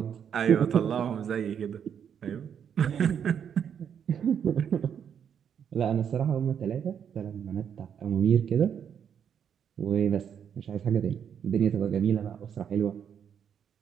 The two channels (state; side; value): quieter; left; 8.1 dB